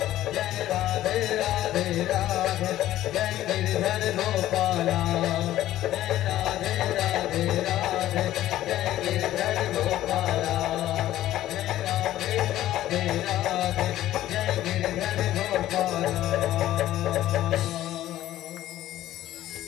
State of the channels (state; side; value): quieter; right; 13.8 dB